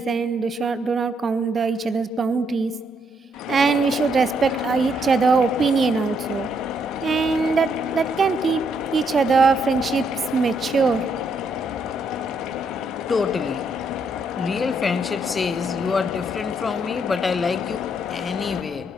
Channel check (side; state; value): both; normal; correlation 0.74